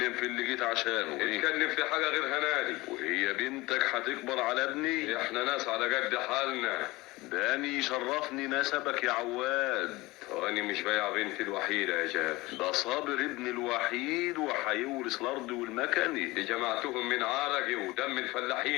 في اللي جيت عشانه. نتكلم في حاجة غير هنادي. وهي بنتك هتكبر على ابني؟ احنا ناس على قد حالنا. داني يشرفني نسبك يا عواد. وانا مش بايع بنتي الوحيدة يا جابر. ده صابر ابن الوحيد وهيورث الارض والمكنة. دي جمعتهم من عرقي ودم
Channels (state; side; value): quieter; right; 20.9 dB